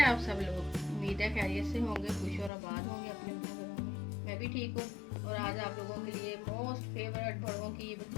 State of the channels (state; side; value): drops out; right; at 2.5 s